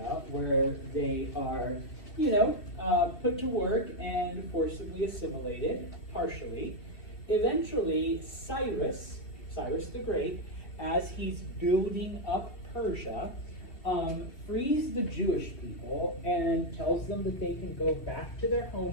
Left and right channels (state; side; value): late; right; 2.7 ms